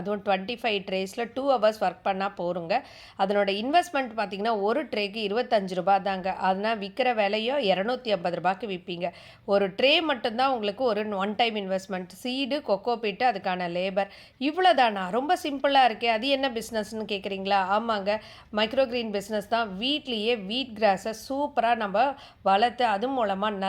25 ட்ரேஸில் 2 hours work பண்ணால் போருங்க. அதனோட இன்வெஸ்ட்மெண்ட் பார்த்திங்கன்னா ஒரு ட்ரேக்கு 25 ரூபா தாங்க. அதனால் விற்கிற விலையோ 250 ரூபாய்க்கு விற்பீங்க. ஒரு ட்ரே மட்டும்தான் உங்களுக்கு ஒரு one time investment, seed, coco peat, அதுக்கான லேபர், இவ்வளோ தானா? ரொம்ப சிம்பிளாக இருக்கே, அது என்ன பிஸ்னஸ்ன்னு கேட்குறீங்களா? ஆமாங்க, மைக்ரோக்ரீன் பிஸ்னஸ் தான். வீட்லேயே வீட் கிராஸை சூப்பராக நம்ம வளர்த்து அது மூலமாக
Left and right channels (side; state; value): both; identical; correlation 1.00